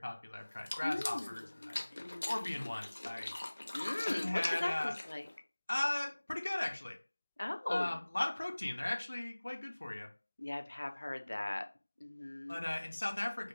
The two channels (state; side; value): inverted; both; correlation -1.00